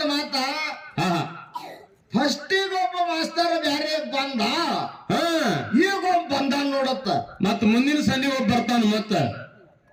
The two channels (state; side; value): identical; both; correlation 1.00